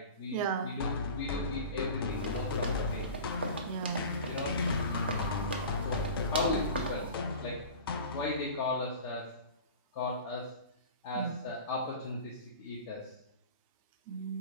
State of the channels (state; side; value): inverted; both; correlation -0.36